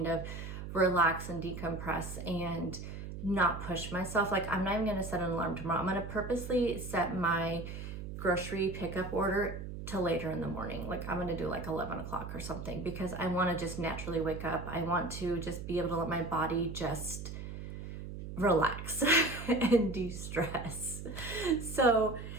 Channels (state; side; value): noise; right; hum, 8 dB below the sound